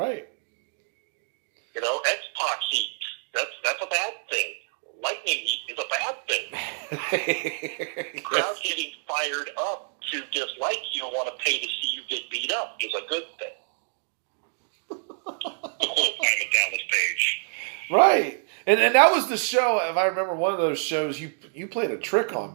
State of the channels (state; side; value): silent; left; digital silence